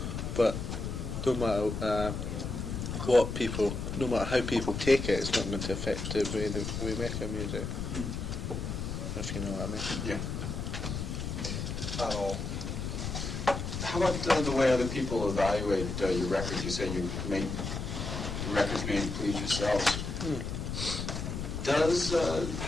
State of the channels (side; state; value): left; noise; rumble, 4 dB below the sound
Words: But no matter no matter how people take it, it's not going to affect the way that we make our music. If you know what I mean. Yeah. How about the way other people evaluate your records? You say you make the records made to please yourselves. Does